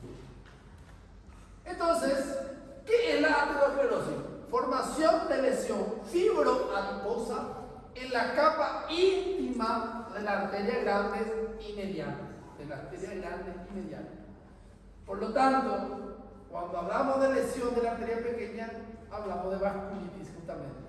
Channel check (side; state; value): both; identical; correlation 1.00